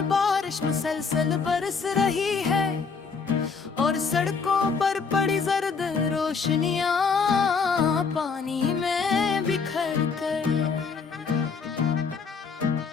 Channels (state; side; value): quieter; right; 5.3 dB